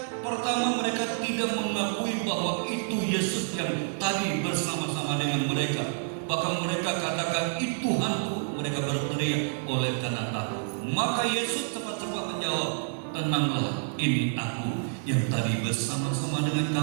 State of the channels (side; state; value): left; silent; digital silence